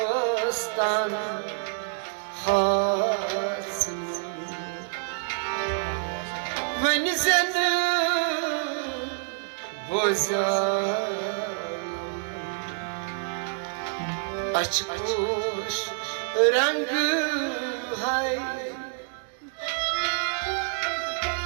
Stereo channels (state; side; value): silent; left; 60 dB below the other